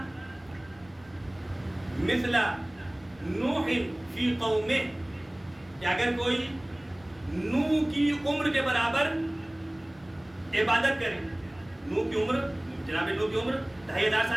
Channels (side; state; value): left; noise; rumble, 26 dB below the sound